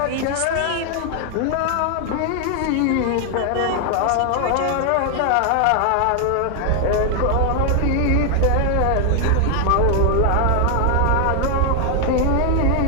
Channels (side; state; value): both; different; correlation 0.00